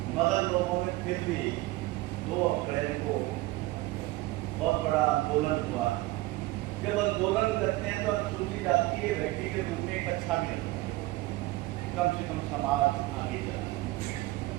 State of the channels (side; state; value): left; quieter; 19.2 dB